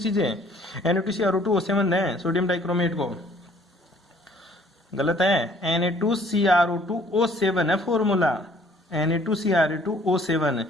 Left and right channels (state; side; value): normal; both; correlation 0.58